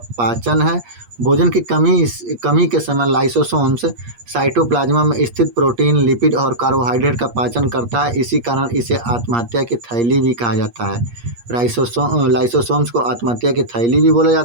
पाचन है। भोजन की कमी के समय लाइसोसोम्स साइटोप्लाज्मा में स्थित प्रोटीन, लिपिड और कार्बोहाइड्रेट का पाचन करता है। इसी कारण इसे आत्महत्या की थैली भी कहा जाता है। लाइसोसोम्स को आत्महत्या की थैली भी बोला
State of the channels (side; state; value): left; late; 8.4 ms